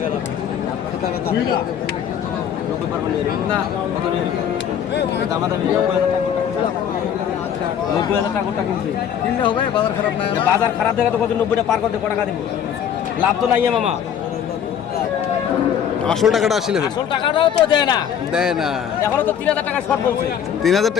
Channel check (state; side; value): quieter; right; 8.8 dB